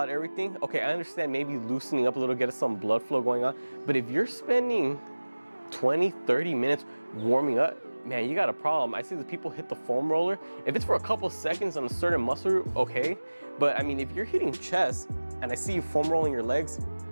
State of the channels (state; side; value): inverted; both; correlation -1.00